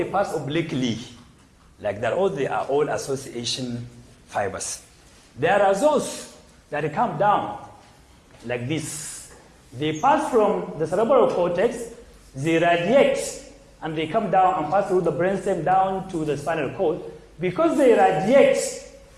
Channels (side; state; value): both; identical; correlation 1.00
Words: pass obliquely like that, or they are all association fibers. There are those that come down like this. They pass from the cerebral cortex, they radiate, and they come down and pass through the brainstem down to the spinal cord. Because they radiate